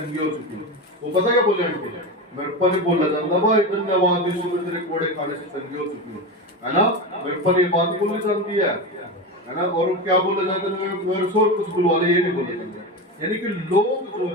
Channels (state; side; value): normal; both; correlation 0.21